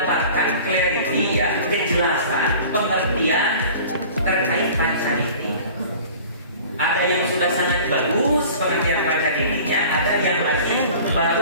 clarity ya, kejelasan pengertian terkait pancaniti. Ada yang sudah sangat bagus pengertian pancanitinya, ada yang lagi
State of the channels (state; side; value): inverted; both; correlation -0.44